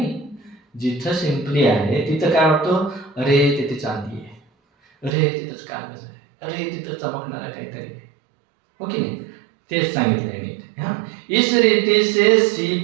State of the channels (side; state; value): left; drops out; at 5.2 s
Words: जिथं सिंपली आहे तिथं काय वाटतं? अरे तिथे चांदी आहे, अरे तिथंच कागज आहे, अरे तिथं चमकणारा काहीतरी आहे, हो की नाही? तेच सांगितलंय नीट. हा, इस रीति से